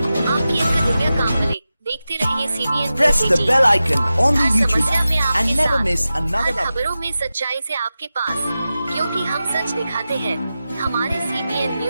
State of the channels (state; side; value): inverted; both; correlation -0.93